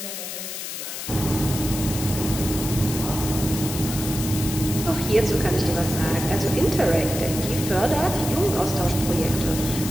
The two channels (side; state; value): left; noise; hiss, 7 dB below the sound